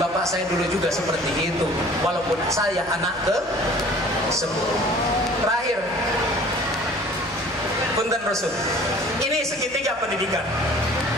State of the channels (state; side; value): noise; left; hum, 24 dB below the sound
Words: saya dulu juga seperti itu. Walaupun saya anak ke-10. Terakhir, punten Rasul. Ini segitiga pendidikan.